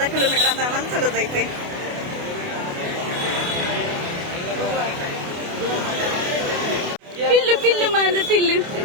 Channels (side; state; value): left; late; 28 ms